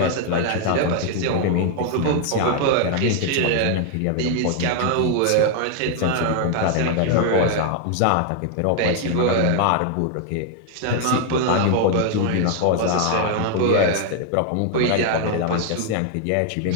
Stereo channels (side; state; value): both; different; correlation 0.00